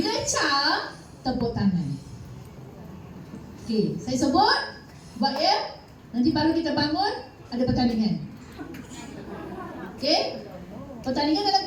ca, tepuk tangan. Okey, saya sebut buat ya. Nanti baru kita bangun ada pertandingan. Okey? Pertandingan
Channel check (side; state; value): both; identical; correlation 1.00